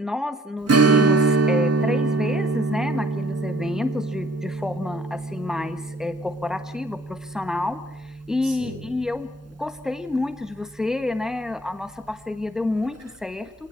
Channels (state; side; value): normal; both; correlation 0.58